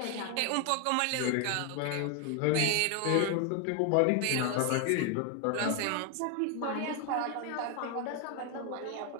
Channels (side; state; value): both; different; correlation 0.01